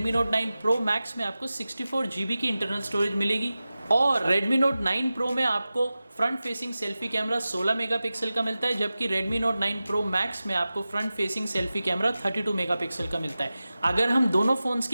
Note 9 Pro Max में आपको 64GB की इंटरनल स्टोरेज मिलेगी। और Redmi Note 9 Pro में आपको front facing selfie camera 16 megapixel का मिलता है, जबकि Redmi Note 9 Pro Max में आपको front facing selfie camera 32 megapixel का मिलता है। अगर हम दोनों फ़ोन्स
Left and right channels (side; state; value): both; inverted; correlation -0.95